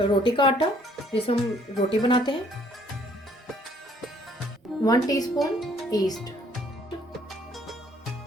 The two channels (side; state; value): both; normal; correlation 0.62